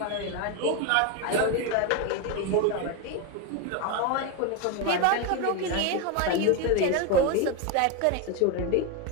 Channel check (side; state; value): both; different; correlation 0.02